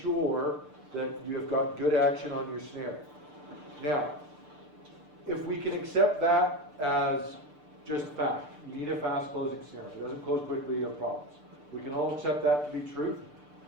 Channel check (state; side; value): late; left; 6.8 ms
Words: that you have got good action on your snare. Now, if we can accept that as just fact, you need a fast closing snare. If it doesn't close quickly, you have problems. We can all accept that to be truth.